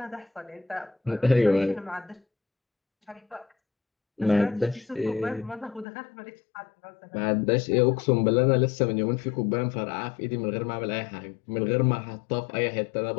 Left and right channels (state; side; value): drops out; right; at 5.9 s